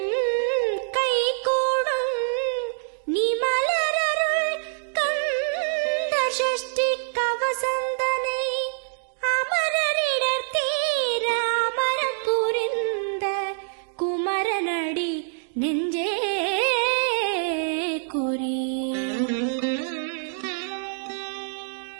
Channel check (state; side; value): silent; left; digital silence